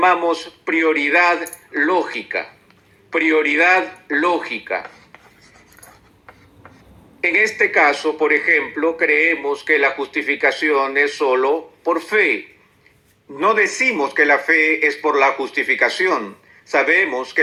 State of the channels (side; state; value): both; identical; correlation 1.00